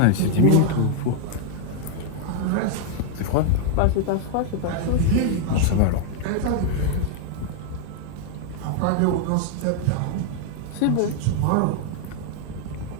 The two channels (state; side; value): different; both; correlation 0.00